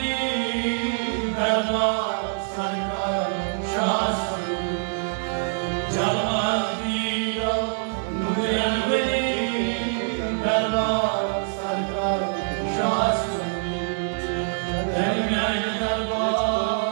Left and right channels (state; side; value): silent; left; digital silence